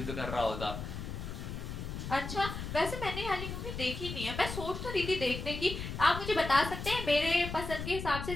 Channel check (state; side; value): noise; left; rumble, 6 dB below the sound